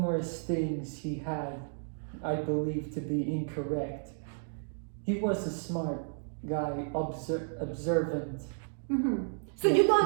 things he had, I believe, to be incorrect, he was a smart guy, observant. So you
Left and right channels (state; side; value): silent; left; digital silence